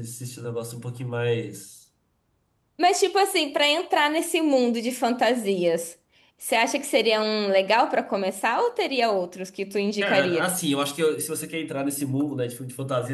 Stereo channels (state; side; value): identical; both; correlation 1.00